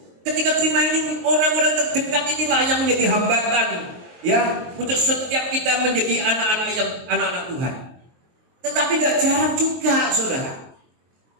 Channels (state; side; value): late; left; 23 ms